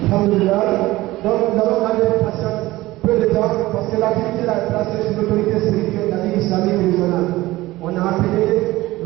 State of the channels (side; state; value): left; quieter; 18.2 dB